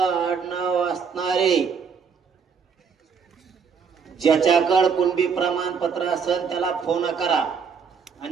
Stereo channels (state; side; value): quieter; left; 6.2 dB